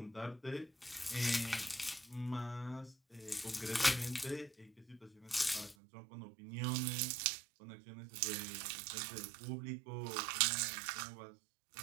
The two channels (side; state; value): left; drops out; at 5.8 s